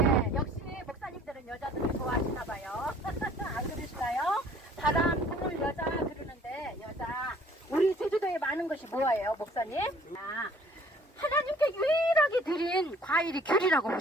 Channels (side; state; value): both; normal; correlation 0.55